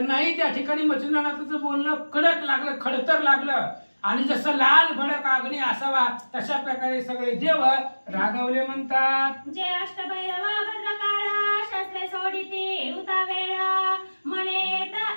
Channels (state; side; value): inverted; both; correlation -1.00